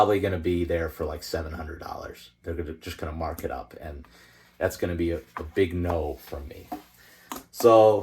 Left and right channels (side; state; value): both; identical; correlation 1.00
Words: going to be there for like $700. They're just going to mark it up, and that's going to be a big no from me.